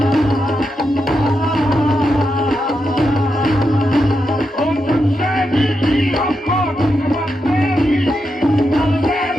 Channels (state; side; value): normal; both; correlation 0.85